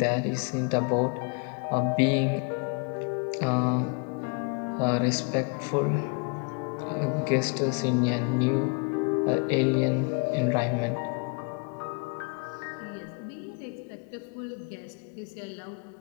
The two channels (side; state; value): right; quieter; 35.2 dB